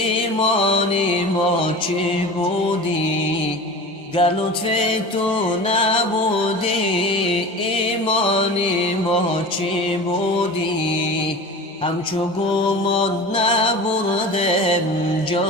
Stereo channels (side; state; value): both; normal; correlation 0.34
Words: ما چی بودی؟ گر لطف تو نبودی، ایمانی ما چی بودی؟ همچو گمان نبردم،